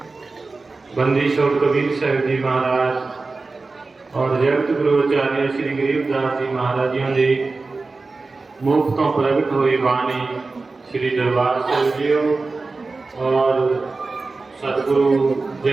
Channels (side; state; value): left; quieter; 3.8 dB